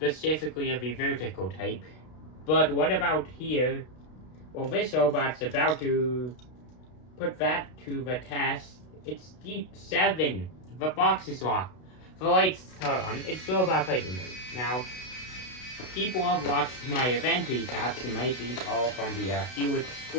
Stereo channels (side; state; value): right; late; 32 ms